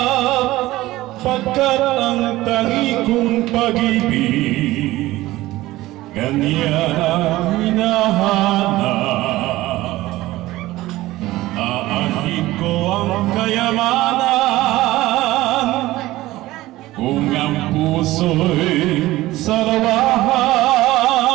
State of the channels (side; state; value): left; quieter; 17.4 dB